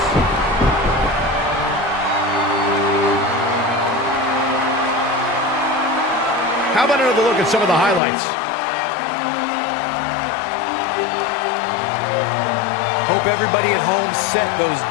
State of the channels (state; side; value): drops out; right; at 8.0 s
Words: How about another look at some of the highlights? Hope everybody at home set those